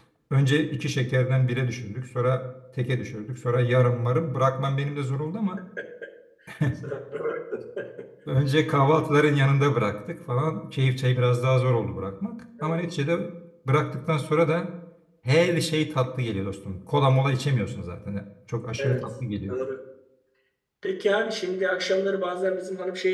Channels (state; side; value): identical; both; correlation 1.00